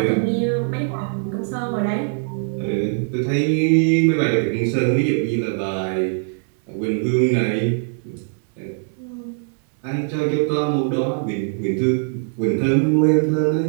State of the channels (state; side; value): silent; left; 62 dB below the other